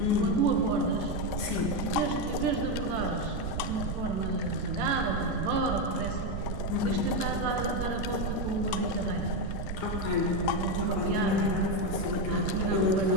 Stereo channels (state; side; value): noise; right; rumble, 4 dB below the sound